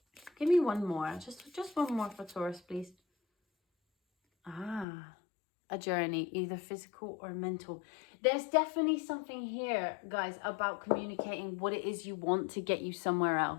Give me one more. Just one more for Taurus, please. A journey, either physical or mental. There's definitely something here, guys, about communicating what it is you want to get you somewhere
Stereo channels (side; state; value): right; drops out; at 4.9 s